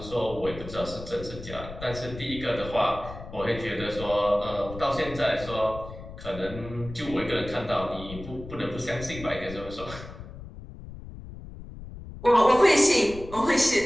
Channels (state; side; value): noise; left; rumble, 13 dB below the sound